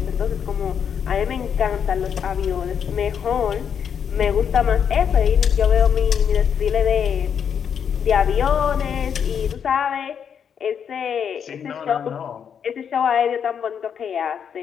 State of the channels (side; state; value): right; quieter; 7.7 dB